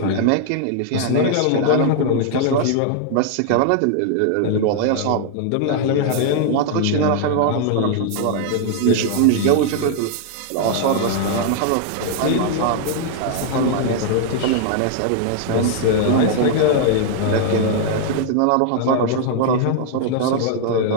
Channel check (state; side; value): different; both; correlation 0.00